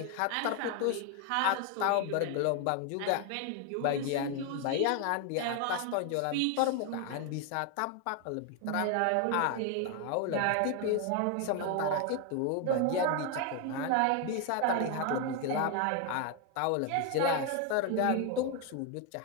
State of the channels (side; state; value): both; different; correlation 0.01